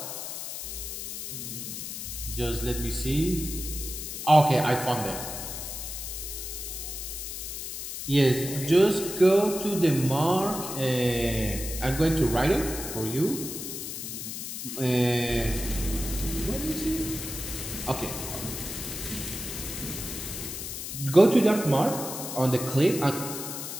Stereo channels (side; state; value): left; noise; hiss, 7 dB below the sound